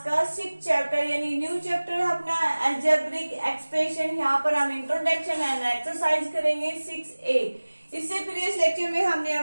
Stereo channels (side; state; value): both; inverted; correlation -1.00